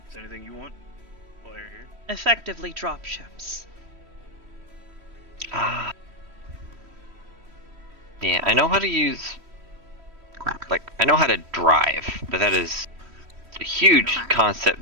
there anything you want while you're here? Effectively drop ships. Ah. Yeah, I know how to use. Quack. Like, I know how to drive, but that is a huge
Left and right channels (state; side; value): late; left; 3.1 ms